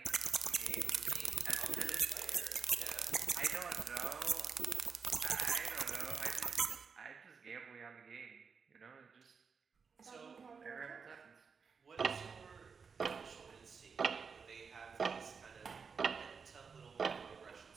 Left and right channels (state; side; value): quieter; left; 5.6 dB